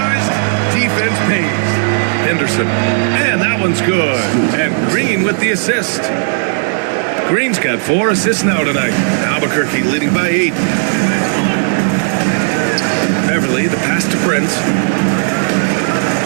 defense pays. Henderson. And that one's good. And Green with the assist. Green's got 4 assists now tonight. Albuquerque leading by 8. Beverly, the pass to Prince.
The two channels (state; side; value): silent; left; digital silence